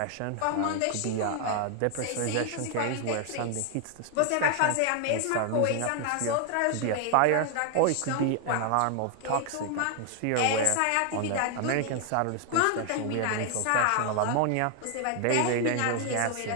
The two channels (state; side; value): different; both; correlation 0.00